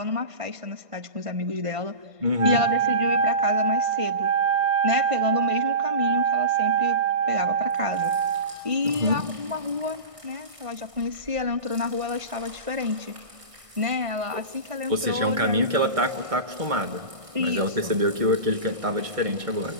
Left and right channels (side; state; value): left; late; 1.6 ms